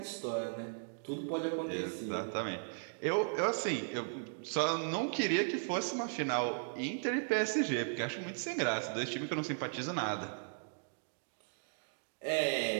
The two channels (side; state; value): left; silent; digital silence